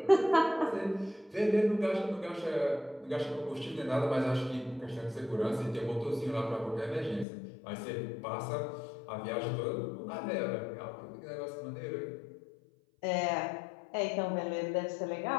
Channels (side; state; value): right; drops out; at 7.2 s